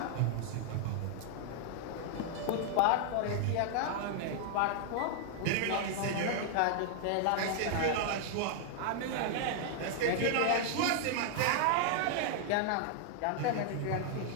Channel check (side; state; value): both; different; correlation 0.00